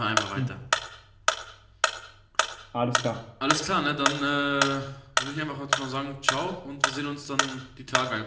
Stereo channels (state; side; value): identical; both; correlation 1.00